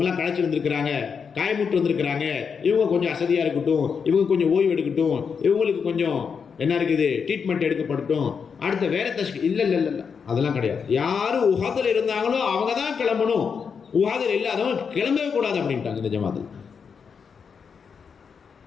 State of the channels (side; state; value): right; quieter; 6.2 dB